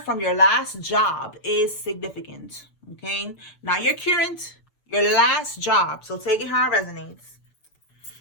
from your last job is significant, okay? Not your current, your last job. So take it how it resonates.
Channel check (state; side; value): late; right; 6.9 ms